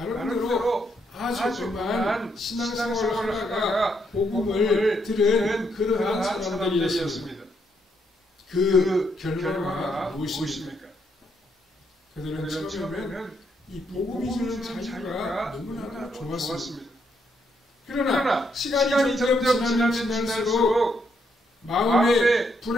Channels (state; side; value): normal; both; correlation 0.76